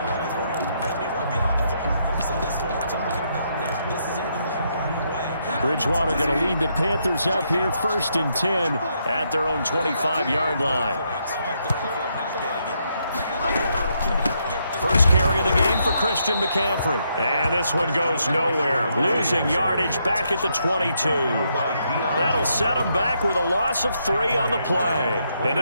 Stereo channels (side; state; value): both; inverted; correlation -0.77